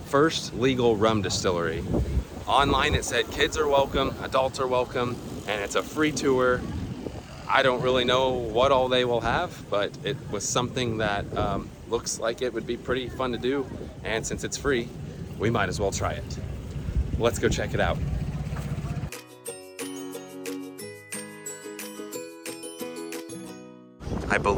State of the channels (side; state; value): both; identical; correlation 1.00